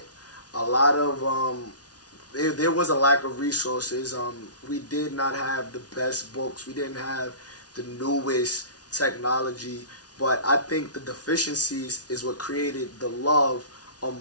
A lot of there was a lack of resources. We did not have the best books. We didn't have the newest technology. But I think the deficiencies is what created the love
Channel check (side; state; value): right; late; 0.68 ms